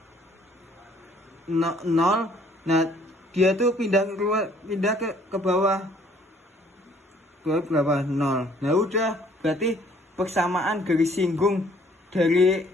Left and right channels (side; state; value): both; normal; correlation 0.60